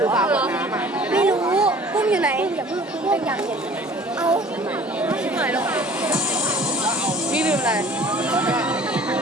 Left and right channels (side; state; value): both; normal; correlation 0.49